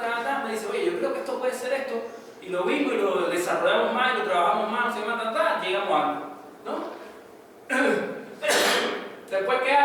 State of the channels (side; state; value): both; identical; correlation 1.00